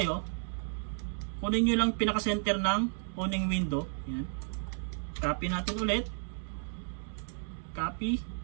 Kunin nyo lang pinaka-center ng owning window. Yan. Copy natin ulit. Copy.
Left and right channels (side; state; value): left; silent; 56 dB below the other